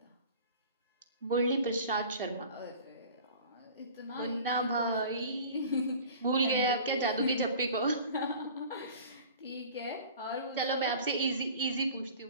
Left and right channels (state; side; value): inverted; both; correlation -0.43